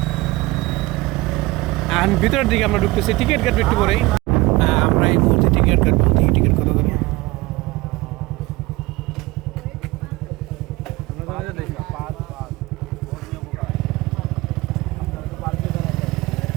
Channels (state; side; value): quieter; left; 21.1 dB